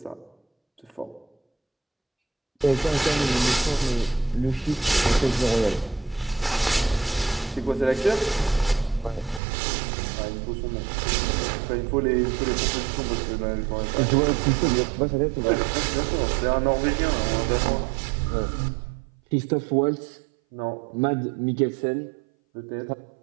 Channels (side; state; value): left; drops out; at 9.4 s